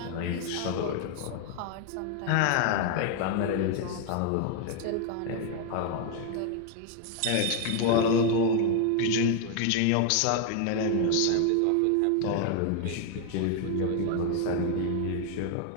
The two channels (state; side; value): different; both; correlation 0.01